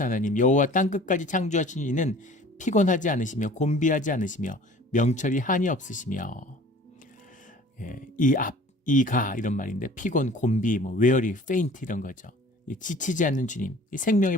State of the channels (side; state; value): both; normal; correlation 0.48